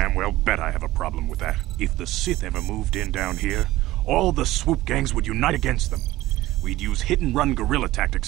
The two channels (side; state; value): left; quieter; 16.7 dB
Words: well bet I have a problem with that. If the Sith ever moved in down here, all the swoop gangs would unite against them. We'd use hit-and-run guerrilla